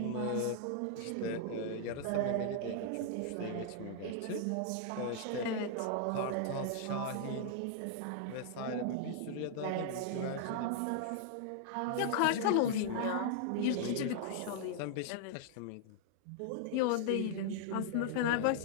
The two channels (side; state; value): both; different; correlation -0.01